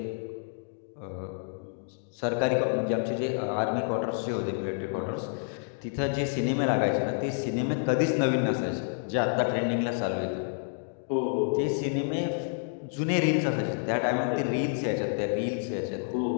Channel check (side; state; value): right; silent; digital silence